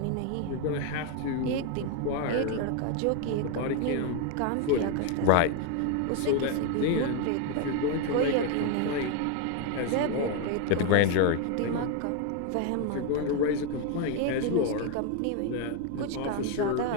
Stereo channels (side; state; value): both; different; correlation 0.01